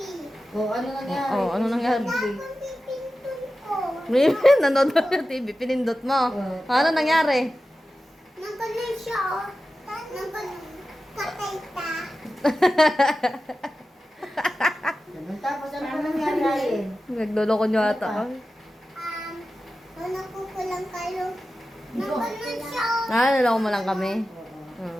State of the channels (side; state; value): both; normal; correlation 0.93